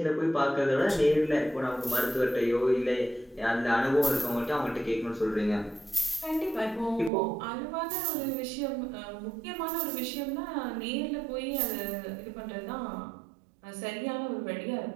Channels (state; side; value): drops out; left; at 7.1 s